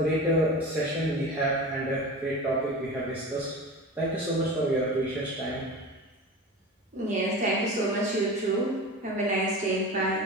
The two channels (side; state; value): both; normal; correlation 0.32